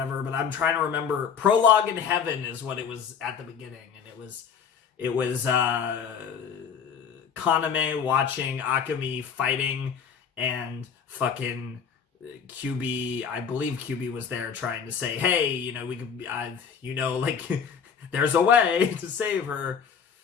but I'm trying to remember. Prologue in Heaven is what it was at the beginning, and it was Kaname watching Akemi fighting, and fucking QB, I believe QB was there trying to say, hey, we could, like, there's a way to save her.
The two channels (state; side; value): quieter; right; 7.0 dB